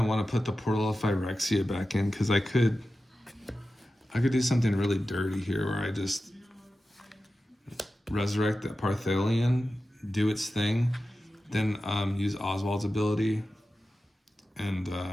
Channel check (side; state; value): both; normal; correlation 0.93